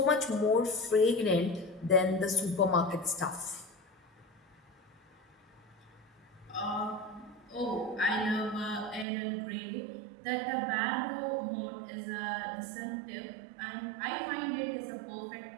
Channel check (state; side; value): drops out; left; at 9.1 s